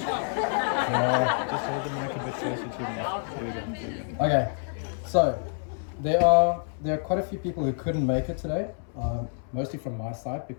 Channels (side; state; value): right; silent; 60 dB below the other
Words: hold the mic a bit closer to me. There we go. Okay, so there are quite a few people who couldn't make it today, mostly from my side